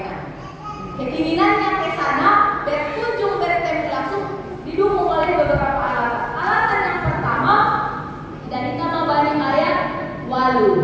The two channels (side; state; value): both; identical; correlation 1.00